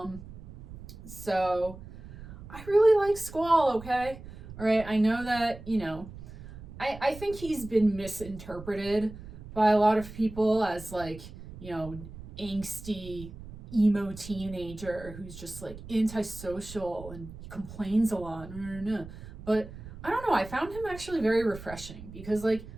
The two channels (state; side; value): noise; right; rumble, 14 dB below the sound